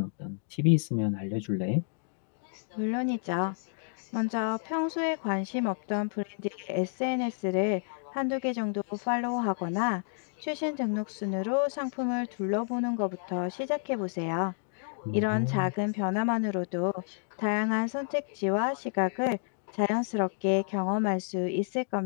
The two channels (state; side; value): silent; right; digital silence